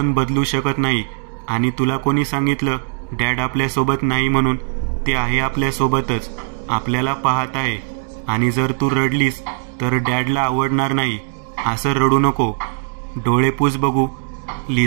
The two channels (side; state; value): left; silent; 66 dB below the other